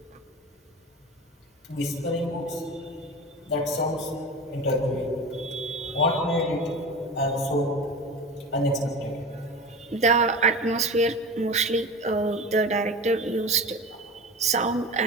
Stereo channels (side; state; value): both; normal; correlation 0.31